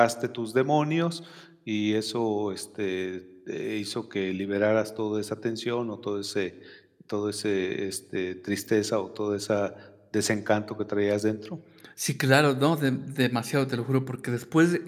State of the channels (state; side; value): identical; both; correlation 1.00